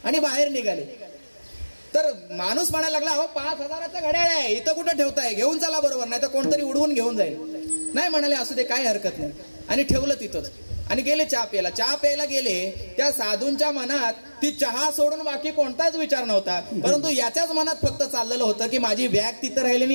आणि बाहेर निघाले. तर माणूस म्हणायला लागला, अहो 5,000चं घड्याळ आहे, इथं कुठं ठेवताय, घेऊन चला बरोबर, नाही तर कोणतरी उडवून घेऊन जाईल. नाही म्हणाले, असू दे काय हरकत नाही, आणि ठेवलं तिथंच आणि गेले चहा प्यायला. चहा प्यायला गेले, त्या साधूंच्या मनात ती चहा सोडून बाकी कोणताच विचार नव्हता, परंतु याच्याच मनात फक्त चाललेलं होतं की माझी बॅग तिथं राहिली आणि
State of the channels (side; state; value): both; inverted; correlation -1.00